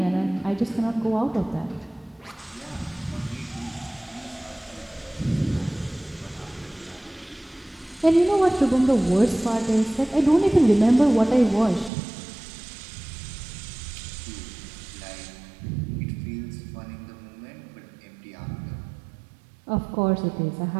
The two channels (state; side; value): drops out; left; at 11.9 s